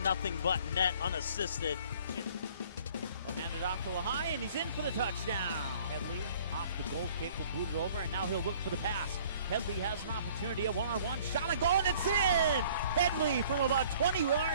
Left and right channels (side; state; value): both; inverted; correlation -0.54